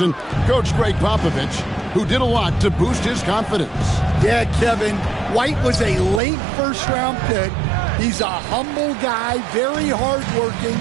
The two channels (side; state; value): left; drops out; at 6.2 s